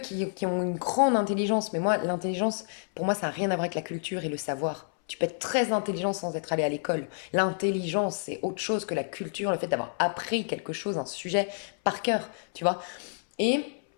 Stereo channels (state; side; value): silent; right; 59 dB below the other